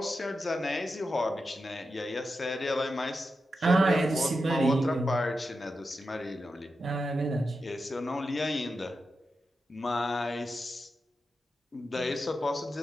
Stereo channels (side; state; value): both; normal; correlation 0.89